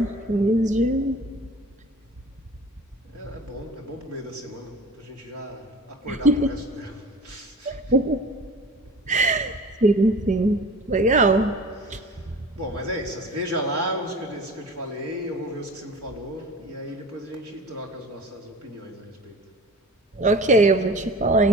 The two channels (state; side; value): normal; both; correlation 0.40